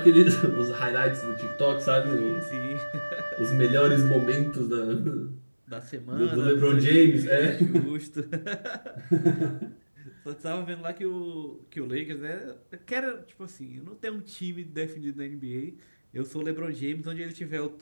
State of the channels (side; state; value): both; inverted; correlation -1.00